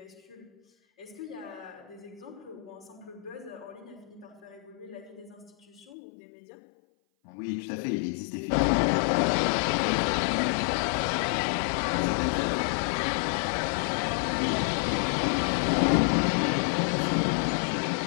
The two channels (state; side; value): drops out; right; at 5.9 s